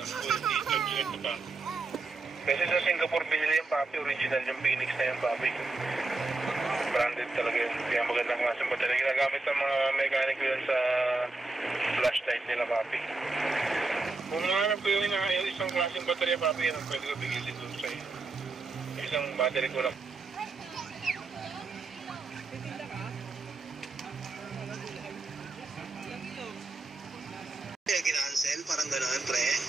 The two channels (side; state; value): left; quieter; 3.5 dB